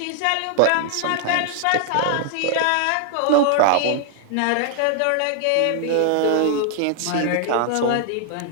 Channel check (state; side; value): different; both; correlation 0.00